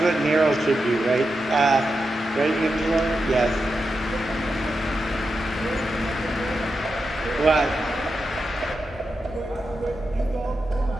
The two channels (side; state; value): both; normal; correlation 0.88